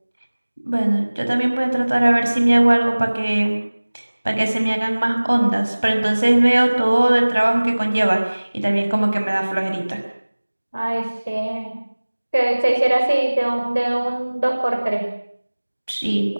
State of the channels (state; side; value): inverted; both; correlation -1.00